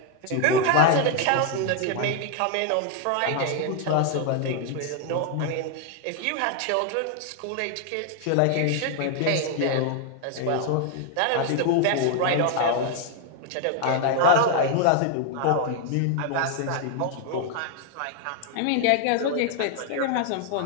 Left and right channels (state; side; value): different; both; correlation 0.00